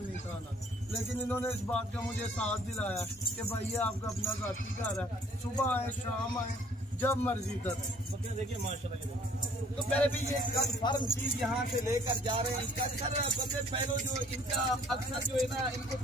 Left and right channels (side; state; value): both; normal; correlation 0.57